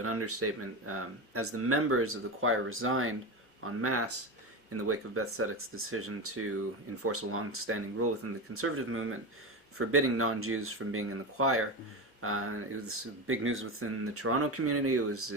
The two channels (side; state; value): both; normal; correlation 0.20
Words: understatement. As the members of the choir resigned en masse in the wake of Beth Tzedec's decision to enforce a long-standing rule within the conservative movement, forbidding non-Jews from being in the choir. It was big news within the Toronto community. It was